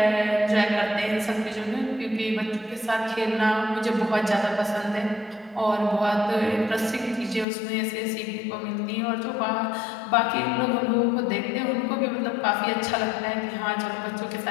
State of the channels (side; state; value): right; drops out; at 7.5 s